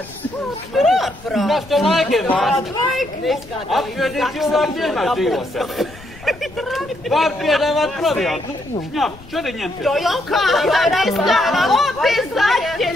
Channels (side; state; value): left; noise; rumble, 20 dB below the sound